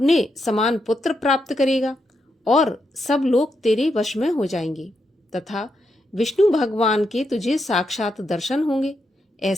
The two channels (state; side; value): normal; both; correlation 0.82